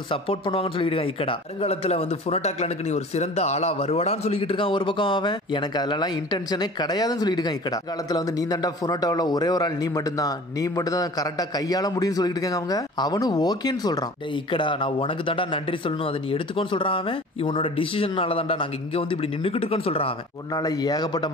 சப்போர்ட் பண்ணுவாங்கன்னு சொல்லிட்டு இருக்காங்க இக்கடா. வருங்காலத்துல வந்து ஃபுனோட்டா கிளானுக்கு நீ ஒரு சிறந்த ஆளா வருவாடான்னு சொல்லிட்டு இருக்கான் ஒரு பக்கம் அவன். எனக்கு அதெல்லாம் இன்டென்ஷனே கிடையாதுன்னு சொல்லிட்டு இருக்கான் இக்கடா. காலத்துல வந்து நீ தாண்டா ஃபுனோட்டாவில் ஒரே ஒரு ஆள், நீ மட்டும் தான் கரெக்டா கையாள முடியும்னு சொல்லிட்டு இருக்காங்க அவங்க. அவனும் ஓகேன்னு சொல்றான். டேய் இக்கடா நான் உனக்கு தாண்டா நன்றி சொல்லணும், அதை நீ எடுத்துக்கோன்னு சொல்றான் அவன். இவனோட டிசிஷனால தாண்டா நாங்க இங்க வந்து இப்படி நின்னுக்கிட்டு இருக்கோம்னு சொல்றான் அவன். உன்னால ஏகப்பட்ட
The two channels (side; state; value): both; normal; correlation 0.42